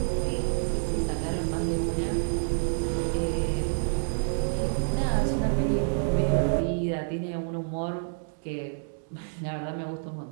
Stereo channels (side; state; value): left; silent; digital silence